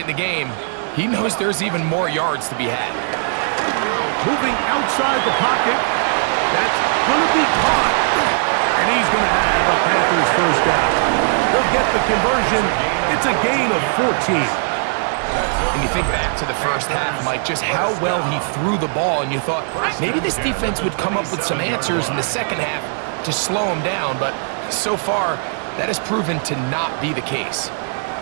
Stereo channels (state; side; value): silent; left; digital silence